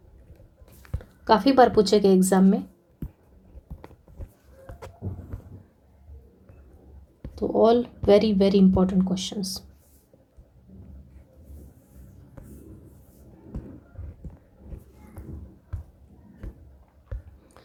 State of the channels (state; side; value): identical; both; correlation 1.00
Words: काफ़ी बार पूछे गए एग्जाम में। तो all very very important questions.